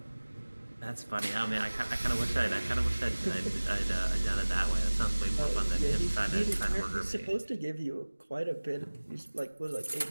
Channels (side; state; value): both; inverted; correlation -1.00